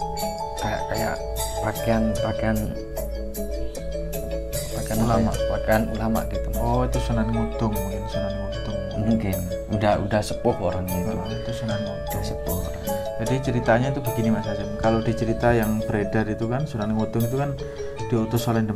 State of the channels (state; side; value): identical; both; correlation 1.00